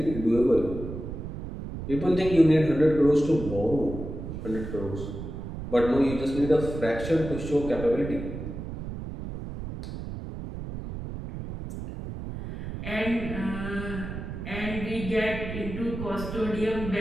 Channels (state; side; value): noise; right; rumble, 8 dB below the sound